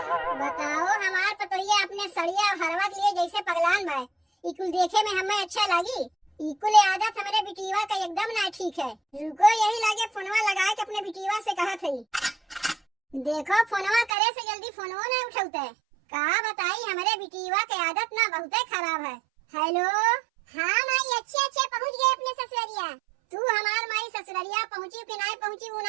बताओ हमार पतोहिया अपने सड़िया और हरवा के लिए जैसे पगलान बा। इकुल देखे में हमें अच्छा लगी, इकुल आदत हमारे बिटिया का एकदम ना ठीक है। रुको यही लागे फोनवा लगा के अपने बिटिया से कहा थी। देखो फोनवा करे से जल्दी फोनवा नहीं उठाते। कहा बताई हमारे बिटिया के आदत ना बहुत खराब है। हेलो, हाँ माई अच्छे पहुँच गए अपने ससुरिया। तू हमार माई ससुरिया पहुँची कि नहीं पहुँची वो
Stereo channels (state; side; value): drops out; left; at 14.2 s